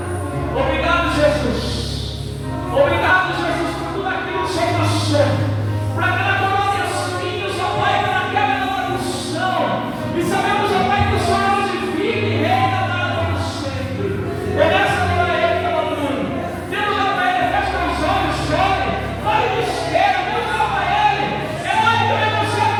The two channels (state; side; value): identical; both; correlation 1.00